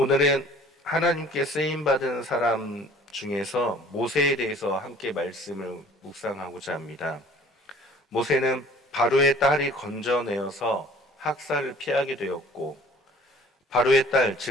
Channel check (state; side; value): normal; both; correlation 0.51